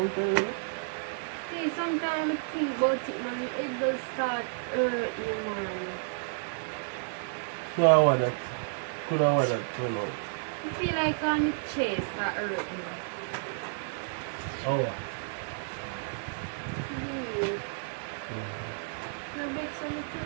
tell me? See, sometimes I think about it, man. It does start hurting, man. So I want that. Could I want that turn out? I feel like on the chest that hurt me. Oh. You make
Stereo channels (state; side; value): silent; left; 57 dB below the other